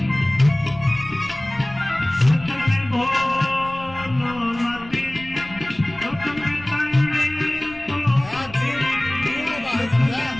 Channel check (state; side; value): noise; left; rumble, 19 dB below the sound